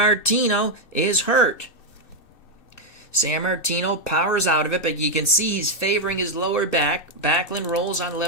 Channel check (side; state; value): right; late; 2.6 ms